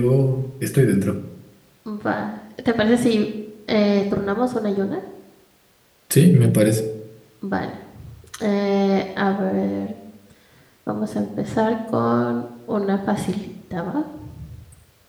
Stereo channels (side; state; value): both; identical; correlation 1.00